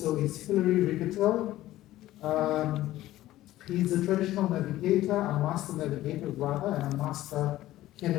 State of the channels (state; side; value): quieter; right; 15.1 dB